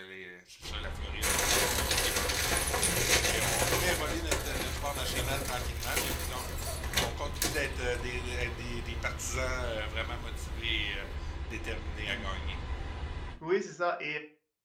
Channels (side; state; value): both; identical; correlation 1.00